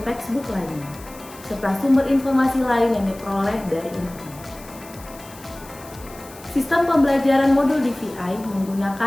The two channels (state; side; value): noise; left; hiss, 20 dB below the sound